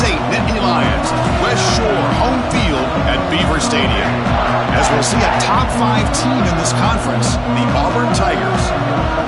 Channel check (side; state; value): both; identical; correlation 1.00